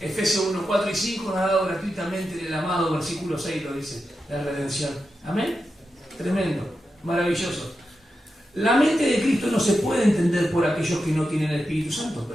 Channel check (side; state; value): both; normal; correlation 0.89